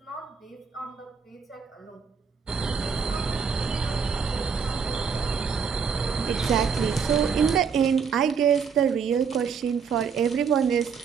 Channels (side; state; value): left; quieter; 6.3 dB